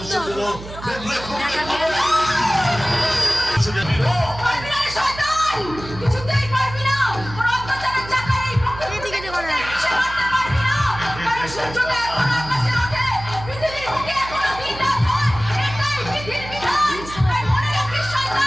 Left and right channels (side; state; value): right; noise; hum, 13 dB below the sound